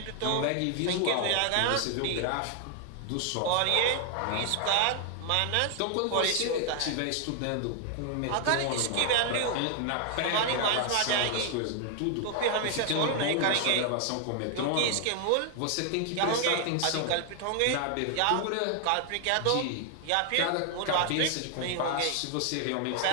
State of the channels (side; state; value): both; different; correlation 0.00